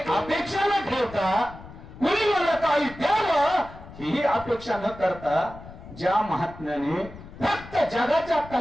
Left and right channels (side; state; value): left; noise; rumble, 17 dB below the sound